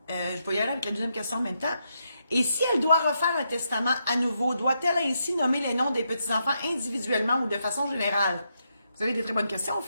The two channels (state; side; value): inverted; both; correlation -0.81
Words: Je vais y aller avec la deuxième question en même temps. Et si elle doit refaire un testament à nouveau, doit-elle ainsi nommer les noms des petits-enfants individuellement ou de façon générale? Vous avez des très bonnes questions,